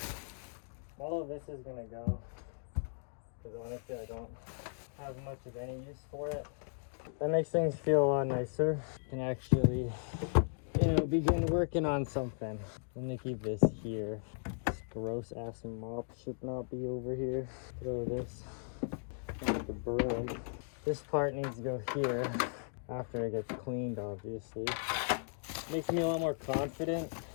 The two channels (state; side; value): silent; right; digital silence